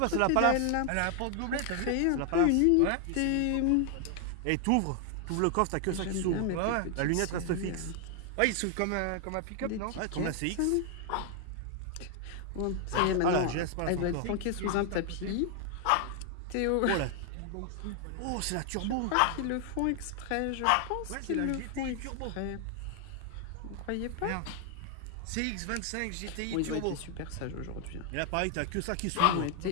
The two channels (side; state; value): both; different; correlation 0.00